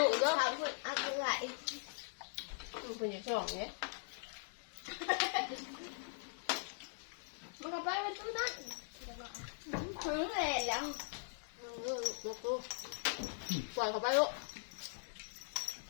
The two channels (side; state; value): right; silent; digital silence